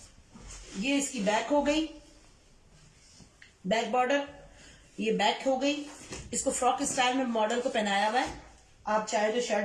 ये इसकी बैक हो गई, बैक बॉर्डर, ये बैक हो गई। इसको फ्रॉक स्टाइल में मॉडल को पहनाया हुआ है, आप चाहे तो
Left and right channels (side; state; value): both; identical; correlation 1.00